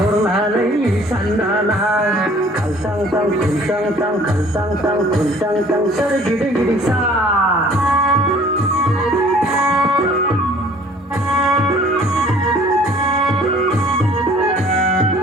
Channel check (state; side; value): normal; both; correlation 0.54